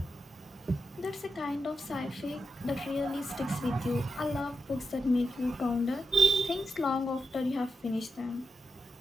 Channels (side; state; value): both; normal; correlation 0.86